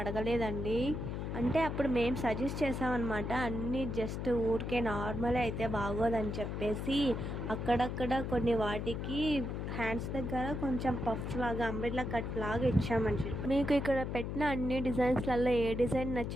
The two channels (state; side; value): noise; left; hum, 4 dB below the sound